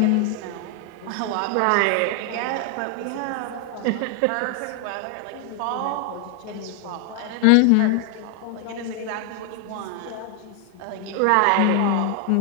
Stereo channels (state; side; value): different; both; correlation 0.00